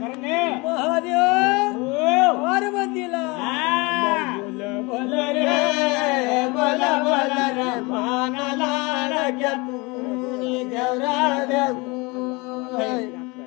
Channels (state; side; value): quieter; right; 26.1 dB